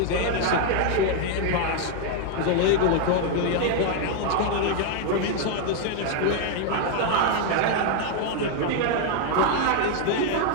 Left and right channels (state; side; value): different; both; correlation 0.00